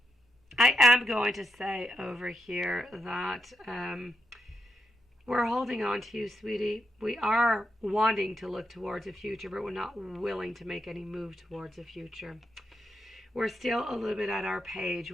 I am going to say over here that we're holding on to you, sweetie. We are wanting to look towards a future, but we're not willing to make any move towards a future. We're still a little bit at our page.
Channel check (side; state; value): both; normal; correlation 0.84